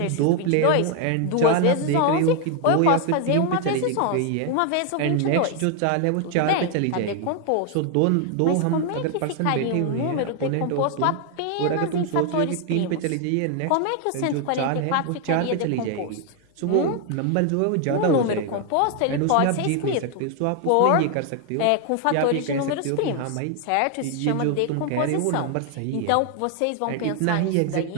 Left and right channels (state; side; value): different; both; correlation 0.00